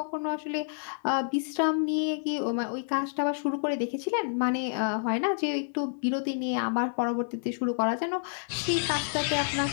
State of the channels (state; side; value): silent; right; 59 dB below the other